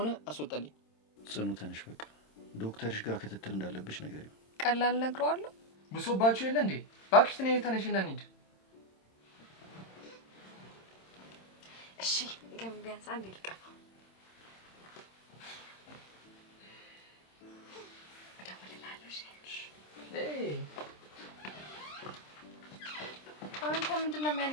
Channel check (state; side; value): late; right; 26 ms